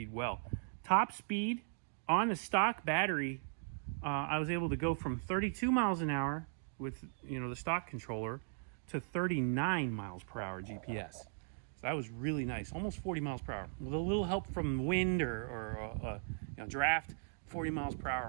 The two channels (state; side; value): silent; left; digital silence